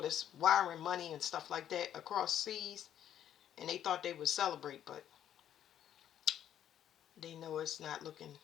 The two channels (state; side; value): quieter; right; 10.4 dB